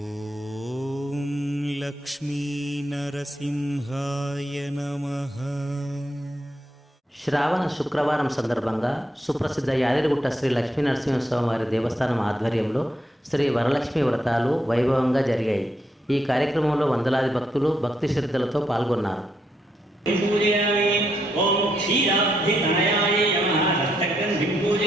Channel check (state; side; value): normal; both; correlation 0.78